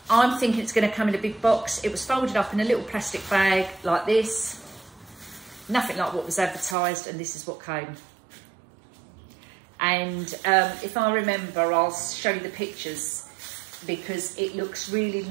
I'm thinking it's going to come in a big box. It was folded up in a little plastic bag like this. Nothing like what was advertised, and this is what came. And if I remember, I'll show you the pictures because it looks really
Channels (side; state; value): left; drops out; at 6.8 s